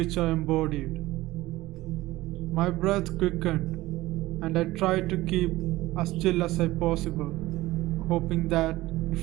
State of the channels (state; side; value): quieter; left; 17.9 dB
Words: embodied. My breath quickened, and I tried to keep as still as I possible, hoping that